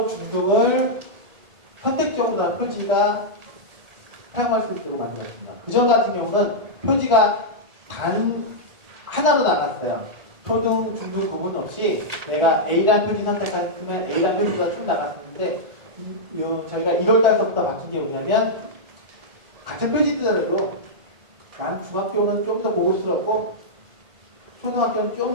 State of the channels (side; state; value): left; late; 1.4 ms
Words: 중등을 선택적으로 표지가 사용할 수 있도록 만들었습니다. 그전 같은 경우는 표지가 단 하나로 나갔어요. 초등, 중등 구분 없이 내가 A라는 표지 선택했으면 A라는 표지가 쭉 나갔었는데 저희가 1월달부터 바뀐 게 뭐냐면 같은 표지들도 난 중학교는 좀 더 고급스럽고 초등학교는